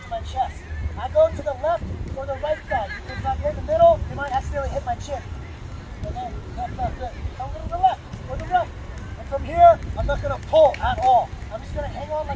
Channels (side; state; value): both; identical; correlation 1.00